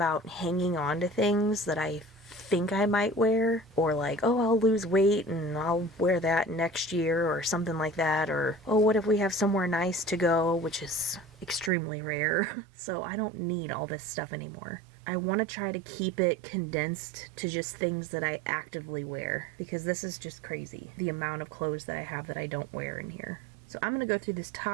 hanging on to things that I think I might wear, or like, oh, I'll lose weight and I'll wear that next year or something like that, or oh, what if we have somewhere nice to go, which is extremely rare. So I don't need all this stuff anymore. I want to try to keep it condensed to just things that I actively wear because this is just crazy, the amount of clothes that I have that I don't wear in here. So I'm going to go through this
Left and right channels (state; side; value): drops out; left; at 11.7 s